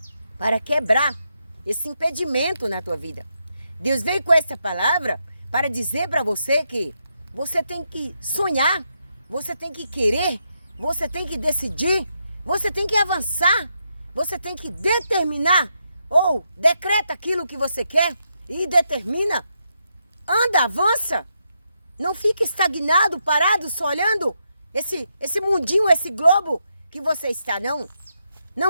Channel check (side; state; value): both; inverted; correlation -0.82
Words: para quebrar esse impedimento na tua vida. Deus veio com essa palavra para dizer para você que você tem que sonhar, você tem que querer, você tem que decidir, você tem que avançar, você tem que determinar ou decreta aquilo que você quer e determina. Anda, avança. Não fique estagnado, parado, só olhando esse mundinho, esse globo que você está, não.